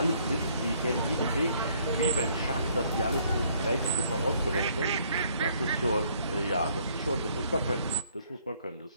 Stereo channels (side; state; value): both; inverted; correlation -0.64